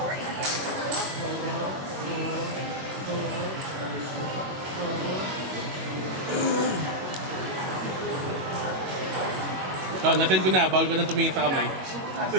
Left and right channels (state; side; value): late; left; 21 ms